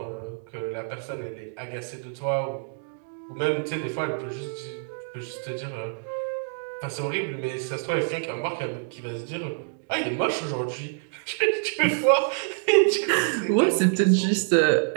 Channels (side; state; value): left; silent; digital silence